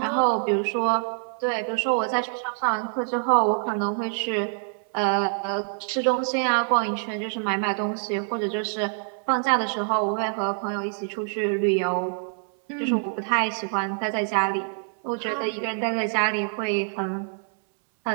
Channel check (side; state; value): left; silent; 61 dB below the other